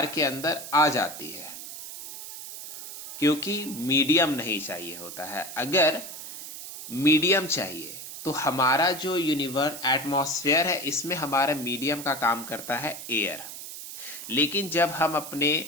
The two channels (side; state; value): right; noise; hiss, 10 dB below the sound